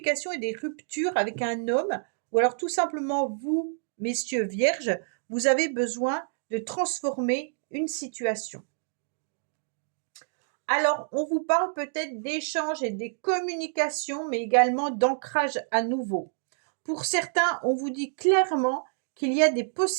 et des ruptures avec un homme, ou alors tout simplement vous, messieurs vierges, vous avez besoin de transformer une situation. Alors, on vous parle peut-être d'échanges et des communications, mais également d'ancrage à nouveau. Pour certains, on vous dit clairement qu'il y a des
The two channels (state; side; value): silent; left; digital silence